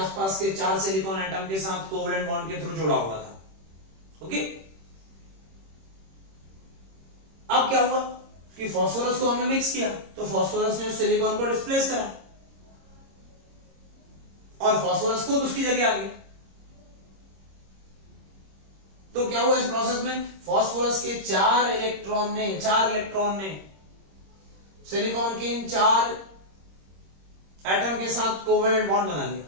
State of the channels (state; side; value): late; left; 26 ms